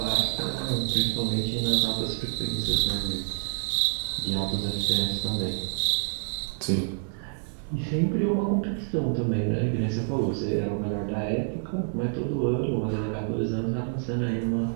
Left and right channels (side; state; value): left; silent; 60 dB below the other